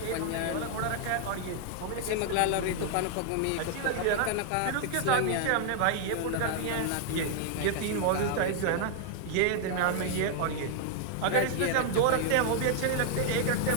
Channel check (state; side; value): different; both; correlation 0.00